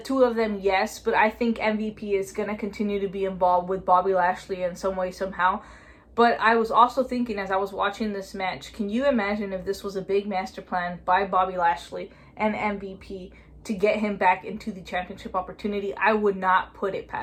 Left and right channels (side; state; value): both; identical; correlation 1.00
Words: of them, yes, but I think MVP is going to continue to be involved with Bobby Lashley in some way, somehow. But I was also thinking as I was watching this match, can you imagine if this was a big master plan by Bobby Lashley and MVP to get him back into the championship opportunity? I would not put it